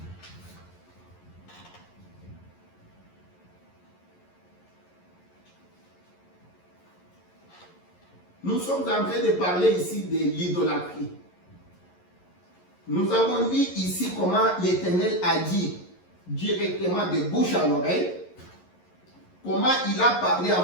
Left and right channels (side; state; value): right; late; 11 ms